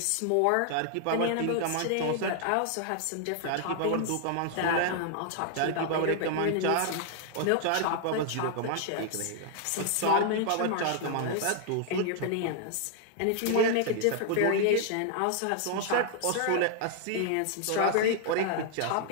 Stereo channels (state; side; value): different; both; correlation 0.00